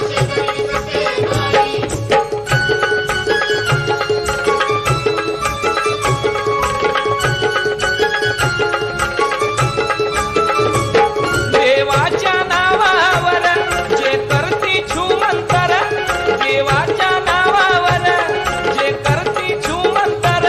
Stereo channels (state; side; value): identical; both; correlation 1.00